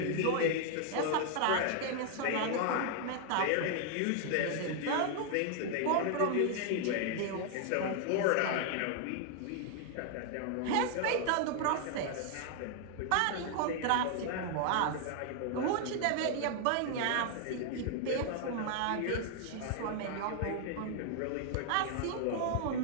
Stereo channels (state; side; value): different; both; correlation 0.00